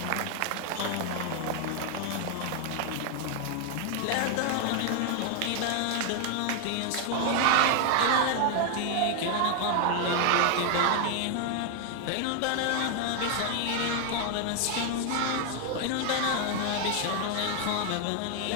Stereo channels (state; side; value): different; both; correlation 0.00